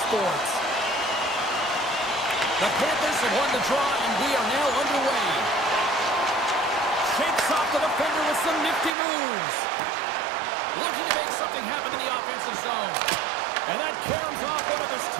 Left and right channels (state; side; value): drops out; left; at 8.9 s